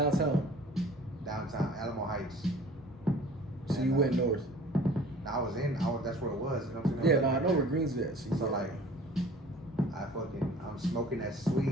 Downtown, Alamo Heights. So you went north. That's where it was. You know what I'm saying? Yeah, no, I know where Green's at. So like, I'm smoking that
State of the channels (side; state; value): both; normal; correlation 0.47